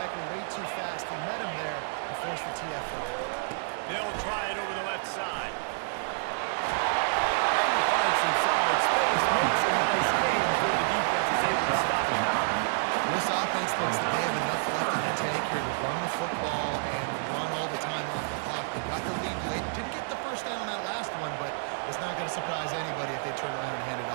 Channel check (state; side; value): silent; left; digital silence